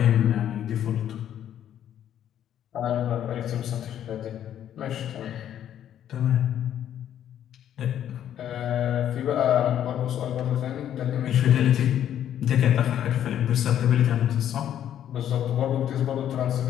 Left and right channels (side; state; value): right; quieter; 10.5 dB